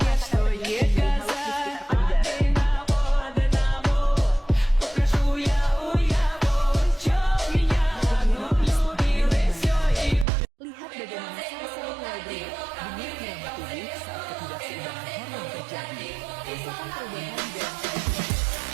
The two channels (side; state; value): left; drops out; at 10.2 s